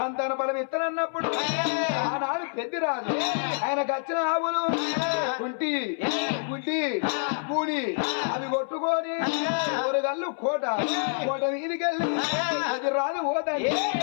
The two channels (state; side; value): silent; right; 60 dB below the other